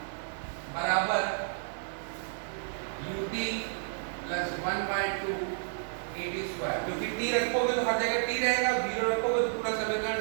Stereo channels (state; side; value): silent; left; digital silence